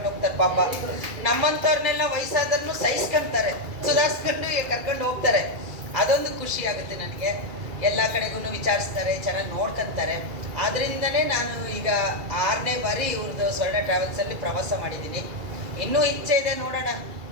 ಹೋಗ್ತಾರೆ. ಪಾಪ ನಮ್ಮಂಥವ್ರನ್ನೆಲ್ಲ ವಯಸ್ಸಾದ್ರೂ ಸಹಿಸ್ಕೊಂತಾರೆ, ಸುಧಾರಿಸ್ಕೊಂಡು ಕರ್ಕೊಂಡು ಹೋಗ್ತಾರೆ. ಅದೊಂದು ಖುಷಿ ಆಗುತ್ತೆ ನನಗೆ. ಎಲ್ಲ ಕಡೆಗೂ ವಿಚಾರಿಸ್ತಾರೆ, ಚೆನ್ನಾಗಿ ನೋಡ್ಕೊಂತಾರೆ. ಆದ್ರಿಂದನೇ ನಾನು ಈಗ 6ನೇ ಬಾರಿ ಇವ್ರದ್ದು ಸ್ವರ್ಣ ಟ್ರಾವೆಲ್ಸಲ್ಲಿ ಪ್ರವಾಸ ಮಾಡಿದ್ದೀನಿ. ಇನ್ನೂ ಇಚ್ಛೆ ಇದೆ, ನೋಡೋಣ.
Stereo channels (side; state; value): left; late; 2.3 ms